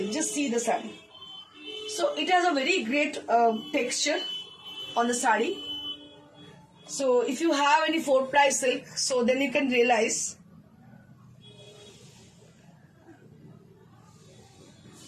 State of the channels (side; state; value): both; identical; correlation 1.00